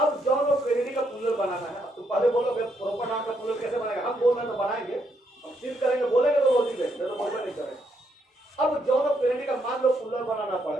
जॉन ऑफ कैनेडी का पुल्लर बनाना है। तो पहले बोलोगे प्रॉपर नाउन का पुल्लर कैसे बनाएगा? हम बोल रहे हैं तो बनाएंगे, हम सिर्फ करेंगे, बोलेंगे तो रोज ही नहीं तो बोलना नहीं करेंगे। अब जॉन ऑफ कैनेडी का मान लो पुल्लर बनाना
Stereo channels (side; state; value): both; normal; correlation 0.76